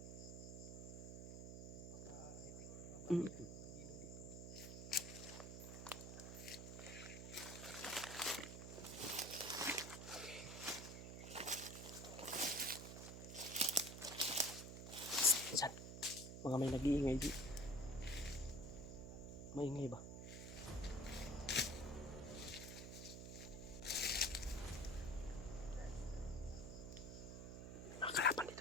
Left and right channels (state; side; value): noise; right; hum, 8 dB below the sound